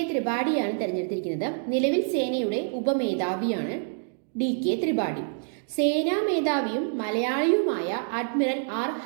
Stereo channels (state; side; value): silent; left; 60 dB below the other